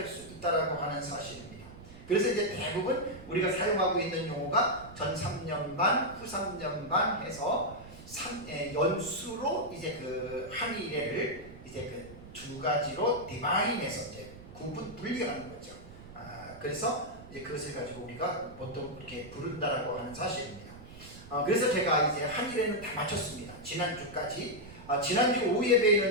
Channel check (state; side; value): noise; right; rumble, 17 dB below the sound